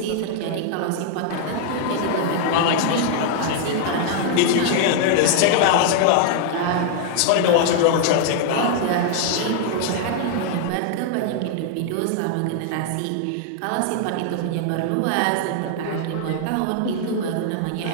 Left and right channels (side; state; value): both; different; correlation 0.00